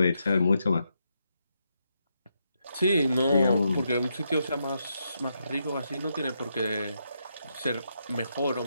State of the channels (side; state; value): both; inverted; correlation -0.81